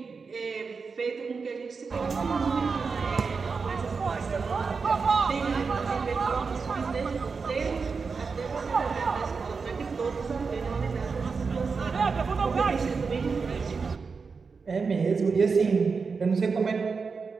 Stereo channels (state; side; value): quieter; left; 5.0 dB